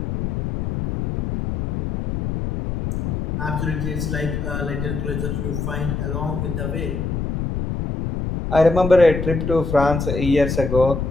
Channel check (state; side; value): noise; left; rumble, 3 dB below the sound